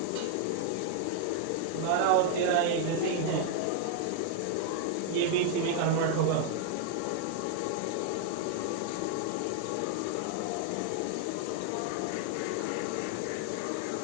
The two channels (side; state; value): both; different; correlation 0.00